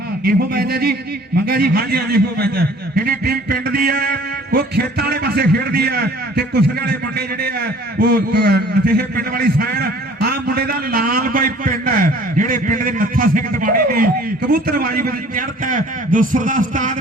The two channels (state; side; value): normal; both; correlation 0.51